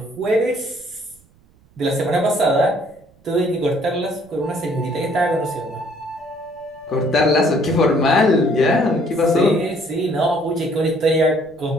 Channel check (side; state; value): right; noise; rumble, 30 dB below the sound